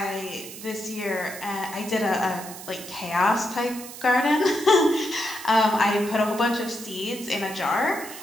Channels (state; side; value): noise; right; hiss, 13 dB below the sound